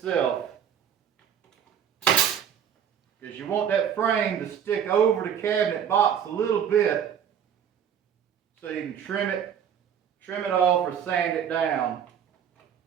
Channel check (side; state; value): left; quieter; 8.5 dB